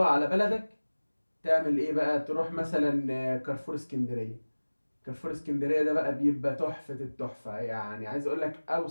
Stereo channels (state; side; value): inverted; both; correlation -1.00